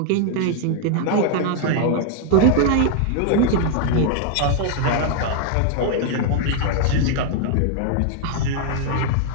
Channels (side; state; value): both; different; correlation 0.00